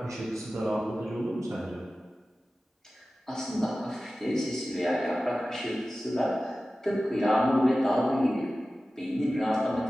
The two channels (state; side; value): normal; both; correlation 0.95